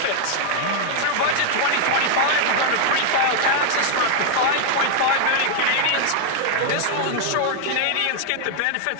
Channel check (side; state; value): both; different; correlation 0.00